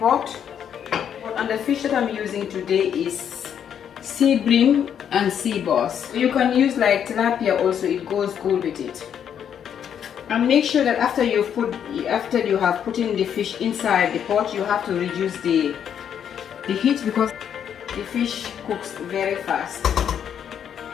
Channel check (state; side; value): quieter; right; 8.7 dB